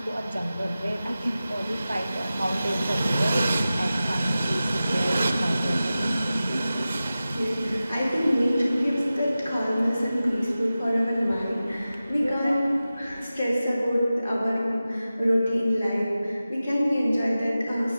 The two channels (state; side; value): inverted; both; correlation -0.95